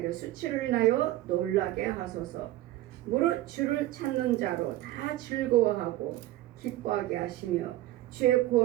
수치를 인하여 놀라게 하소서. 무릇 주를 찾는 자로 다 즐거워하고 기뻐하게 하시며 주의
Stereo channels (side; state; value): left; quieter; 15.7 dB